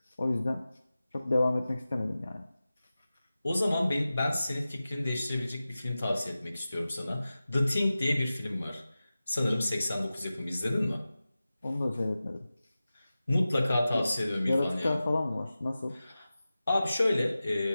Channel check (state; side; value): inverted; both; correlation -0.95